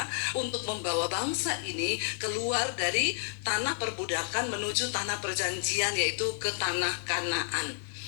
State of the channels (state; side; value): silent; right; digital silence